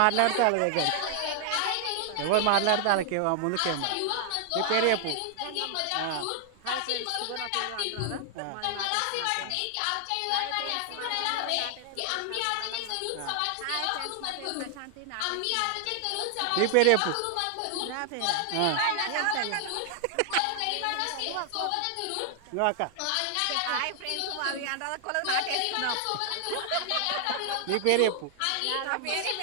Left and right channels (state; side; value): different; both; correlation 0.00